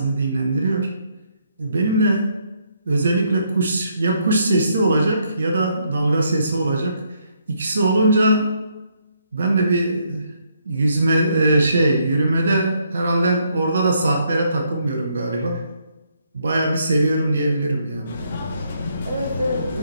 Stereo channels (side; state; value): both; inverted; correlation -0.73